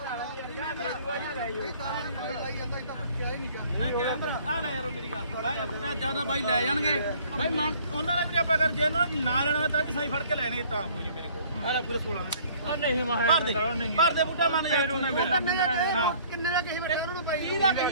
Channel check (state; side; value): inverted; both; correlation -0.55